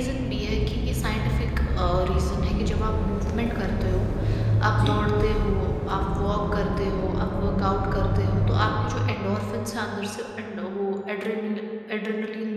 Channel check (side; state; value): both; identical; correlation 1.00